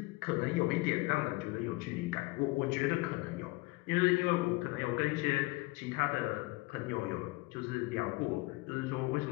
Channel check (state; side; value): quieter; right; 22.7 dB